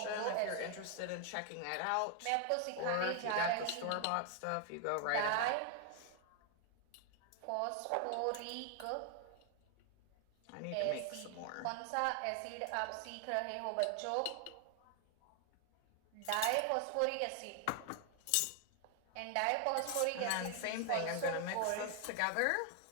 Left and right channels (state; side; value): different; both; correlation 0.00